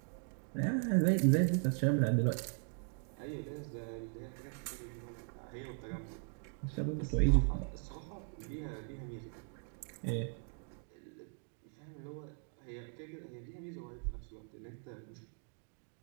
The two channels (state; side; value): silent; left; 52 dB below the other